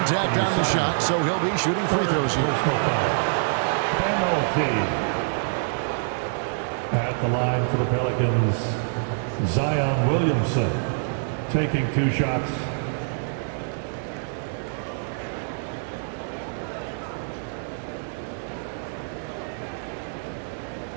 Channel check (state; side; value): silent; left; digital silence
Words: on the shot, so he'll be shooting free throws here. Penalty. At the line for the Pelicans, Zion Williamson taking 2 shots.